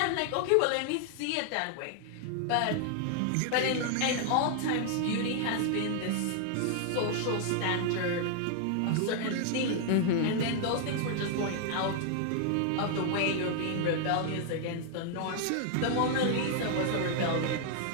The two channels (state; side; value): different; both; correlation 0.00